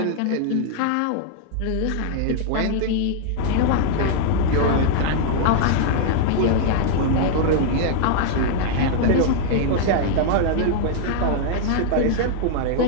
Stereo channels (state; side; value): different; both; correlation -0.01